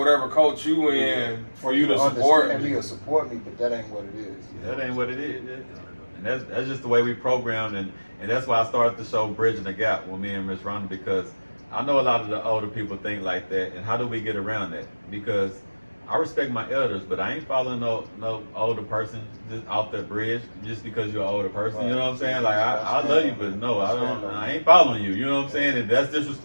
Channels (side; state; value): both; inverted; correlation -1.00